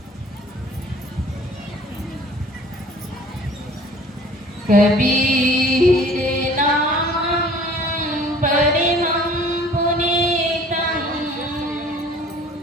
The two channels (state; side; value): normal; both; correlation 0.50